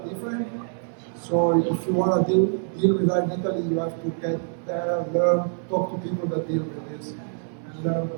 different. So, if you want to deal with that in Italy, you have to get there, learn, talk to people that deal with this, and learn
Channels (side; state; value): left; silent; 59 dB below the other